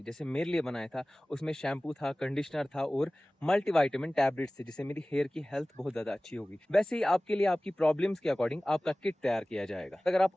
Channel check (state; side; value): normal; both; correlation 0.98